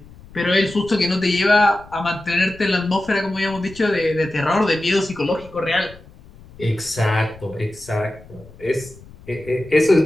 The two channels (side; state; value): left; noise; rumble, 22 dB below the sound